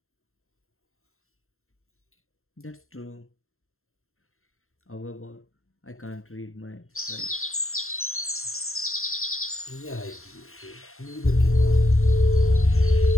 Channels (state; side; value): late; right; 0.62 ms